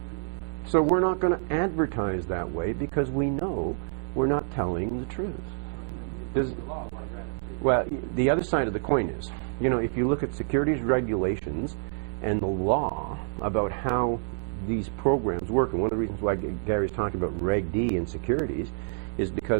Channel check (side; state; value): left; silent; digital silence